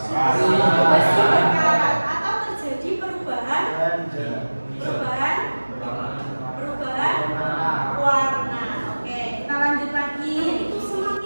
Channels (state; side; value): inverted; both; correlation -1.00